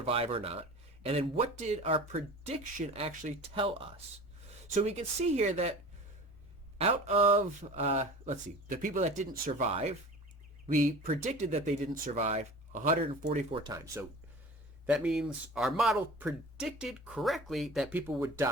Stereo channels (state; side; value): normal; both; correlation 0.39